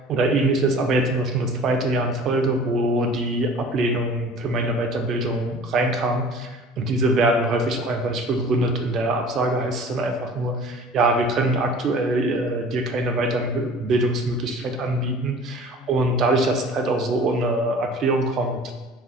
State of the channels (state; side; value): normal; both; correlation 0.44